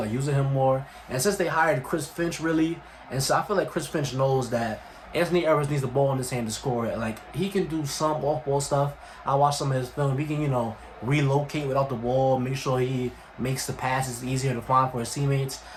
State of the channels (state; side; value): identical; both; correlation 1.00